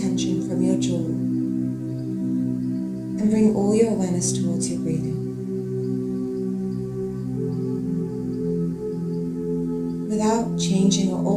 from your jaw. And bring all your awareness towards your breathing. Without changing or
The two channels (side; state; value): both; identical; correlation 1.00